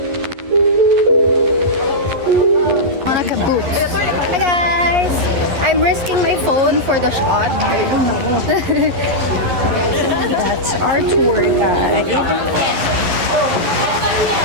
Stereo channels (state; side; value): late; left; 11 ms